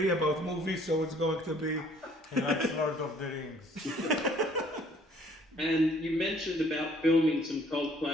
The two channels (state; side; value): normal; both; correlation 0.59